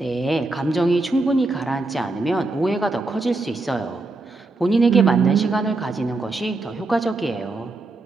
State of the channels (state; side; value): quieter; left; 3.2 dB